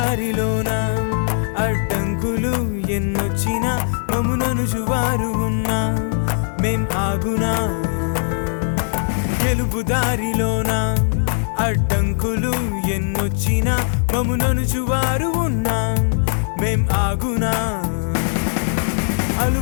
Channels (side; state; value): right; silent; digital silence